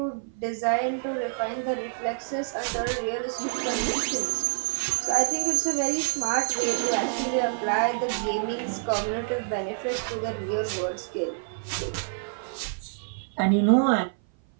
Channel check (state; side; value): silent; left; 56 dB below the other